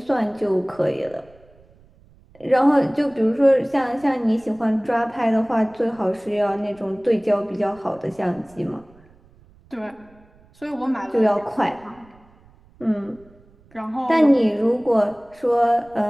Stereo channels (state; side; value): noise; right; rumble, 28 dB below the sound